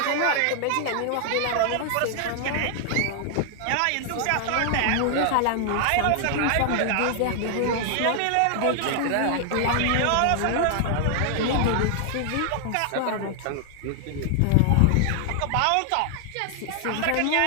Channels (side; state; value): both; different; correlation 0.00